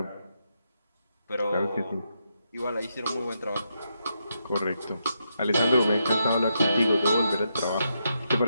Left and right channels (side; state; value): both; inverted; correlation -0.82